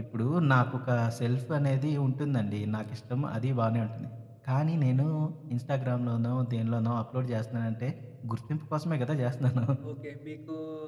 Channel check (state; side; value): identical; both; correlation 1.00